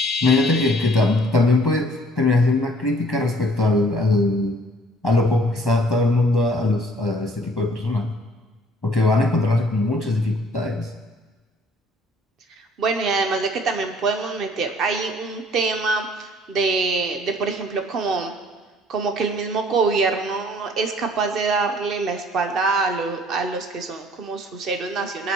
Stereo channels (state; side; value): normal; both; correlation 0.57